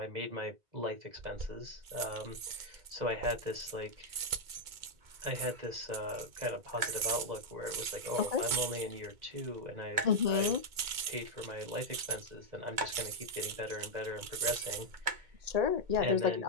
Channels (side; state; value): left; late; 2.3 ms